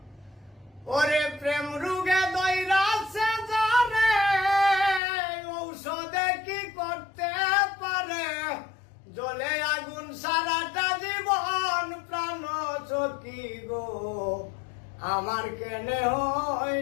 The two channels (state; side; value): drops out; right; at 5.0 s